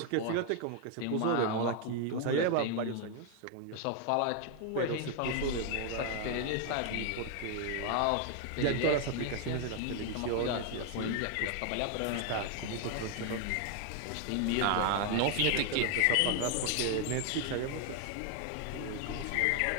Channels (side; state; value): both; different; correlation 0.01